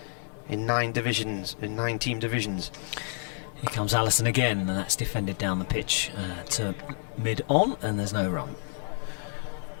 in 9 divisions, in 9 team divisions. Here comes Allison again, and that's defended down the pitch to mid-on, and there's no run.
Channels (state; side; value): silent; right; 59 dB below the other